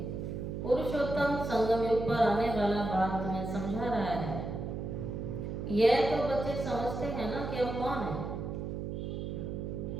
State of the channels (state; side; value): noise; right; hum, 4 dB below the sound